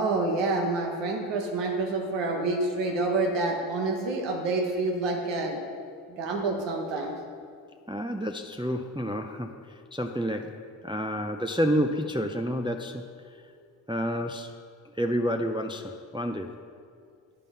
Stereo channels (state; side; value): normal; both; correlation 0.38